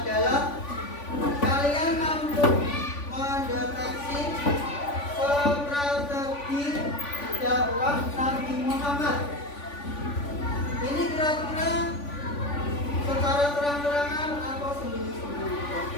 kalian mampu mendeteksi strategi dakwah Nabi Muhammad. Ini kira-kira secara terang-terangan atau sembunyi-sembunyi.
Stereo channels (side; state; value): right; late; 3.5 ms